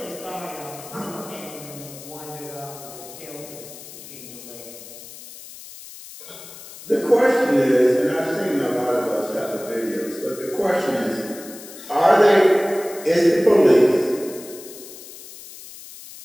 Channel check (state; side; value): noise; left; hiss, 16 dB below the sound